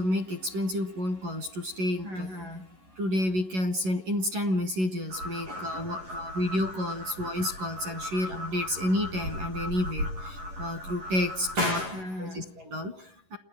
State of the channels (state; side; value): late; left; 11 ms